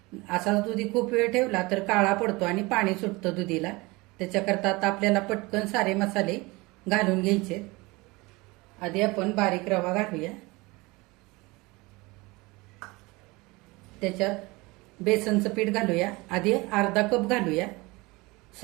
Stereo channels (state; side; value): quieter; left; 23.6 dB